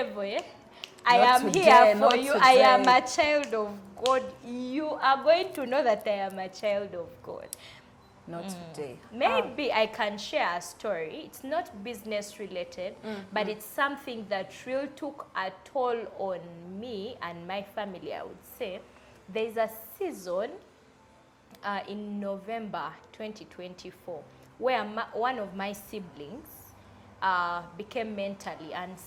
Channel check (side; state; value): both; identical; correlation 1.00